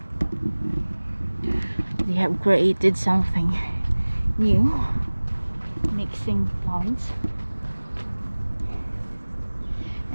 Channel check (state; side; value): inverted; both; correlation -1.00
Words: They have created something new, mixing plants,